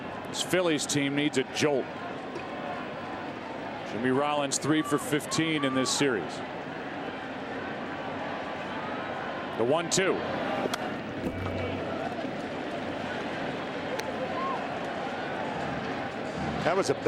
This Phillies team needs a jolt. Jimmy Rollins 3 for 15 in this series. The 1-2. That was a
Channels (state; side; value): identical; both; correlation 1.00